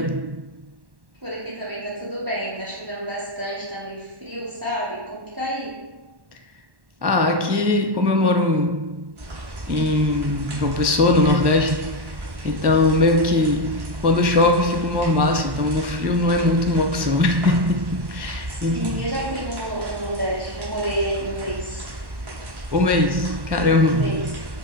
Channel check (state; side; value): late; left; 1.1 ms